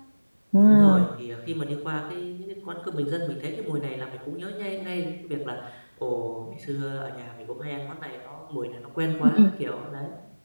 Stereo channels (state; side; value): inverted; both; correlation -1.00